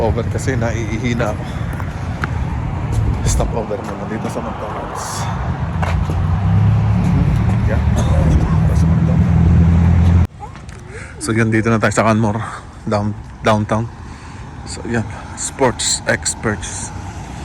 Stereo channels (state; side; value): identical; both; correlation 1.00